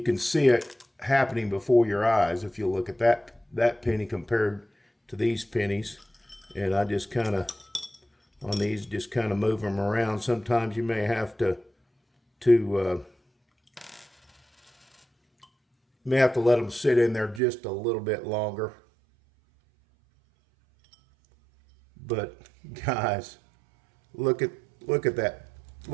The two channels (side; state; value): left; drops out; at 17.4 s